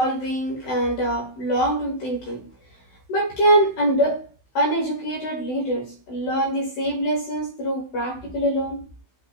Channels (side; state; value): right; late; 16 ms